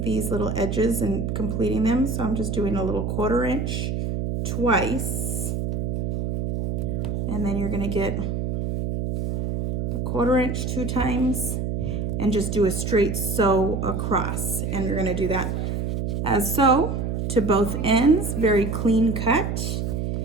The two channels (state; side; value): noise; right; hum, 1 dB below the sound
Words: these little edges and completing them. So I'm just doing a little 1/4 inch twice. And then you're gonna get a 1/4 inch 2 times and just do a straight sew across. And you're gonna do that as so to both ends, very clean cut.